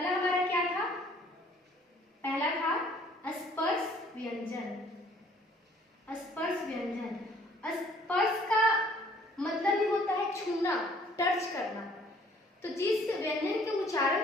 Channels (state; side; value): normal; both; correlation 0.58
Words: हमारा क्या था? पहला था स्पर्श व्यंजन। स्पर्श व्यंजन, स्पर्श का मतलब ही होता है छूना, टच करना। तो जिस व्यंजन के